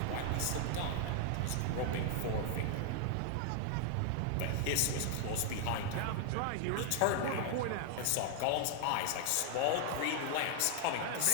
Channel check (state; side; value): different; both; correlation 0.00